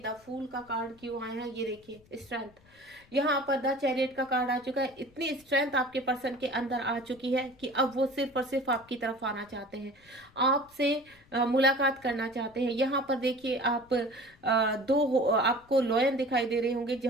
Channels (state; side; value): noise; left; rumble, 29 dB below the sound